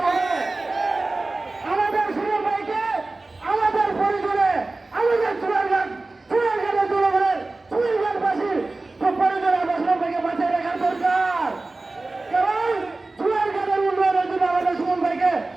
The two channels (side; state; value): left; quieter; 3.2 dB